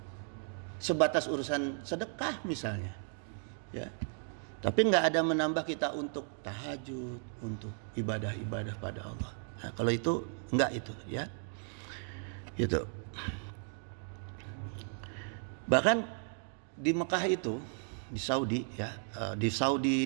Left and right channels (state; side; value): silent; left; 54 dB below the other